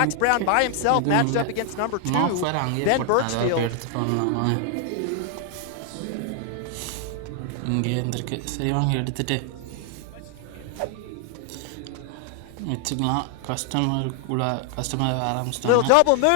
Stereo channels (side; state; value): both; different; correlation 0.00